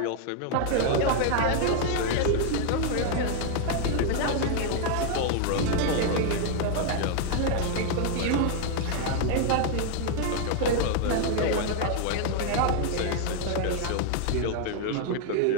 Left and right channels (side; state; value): both; different; correlation 0.00